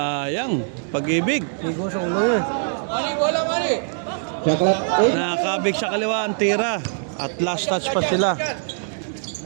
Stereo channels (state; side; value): silent; left; digital silence